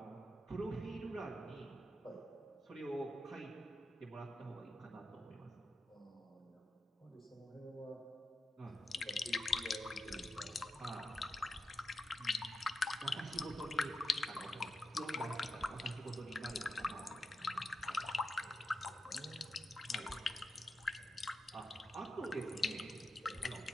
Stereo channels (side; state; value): both; normal; correlation 0.89